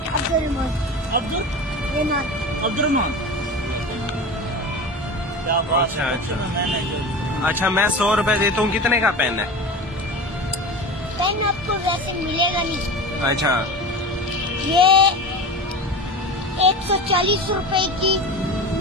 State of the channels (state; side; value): normal; both; correlation 0.30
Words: अब्दुल अब्दुलरहमान। क्या बात अच्छा है। अच्छा अच्छा, मैं 100 रुपए देता हूँ, कितने का पेन है? पेन आपको वैसे मिलेगा नहीं। अच्छा, ये 140 रुपए की